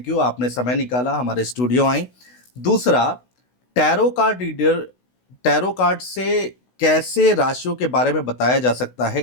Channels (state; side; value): late; right; 16 ms